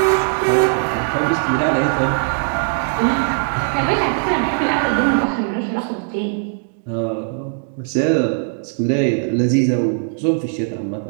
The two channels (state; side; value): silent; left; digital silence